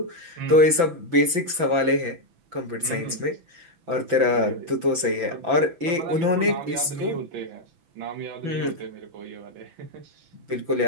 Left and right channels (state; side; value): late; left; 6.0 ms